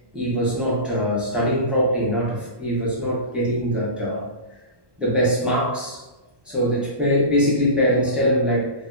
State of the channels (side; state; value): left; late; 1.2 ms